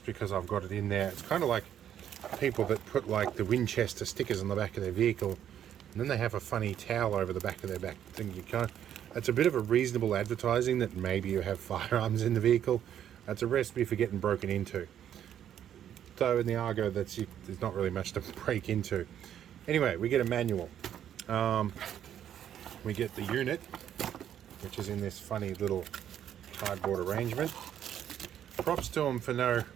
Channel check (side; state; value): left; quieter; 10.1 dB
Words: because I've got it in there. It's kind of like people that put like the Winchester stickers on the back of their vehicle, and then they have a funny towel over the back of their back thing. You can't, it's a bit of a reasonable advertising that maybe you have firearms in the vehicle. That's a recipe for getting broken into. Though in the Argo, there's not really much to break into. Anyway, we get a manual. We get the unit, which is in this funny little cardboard arrangement. Props to them for no